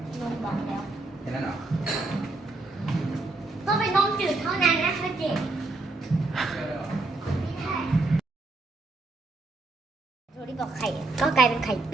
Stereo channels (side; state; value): left; quieter; 3.2 dB